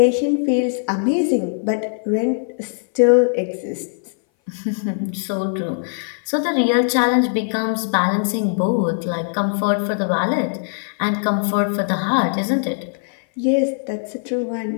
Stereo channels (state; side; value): silent; right; 59 dB below the other